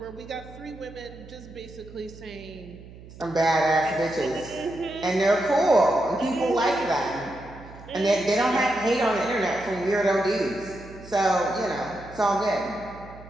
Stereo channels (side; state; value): right; noise; hum, 18 dB below the sound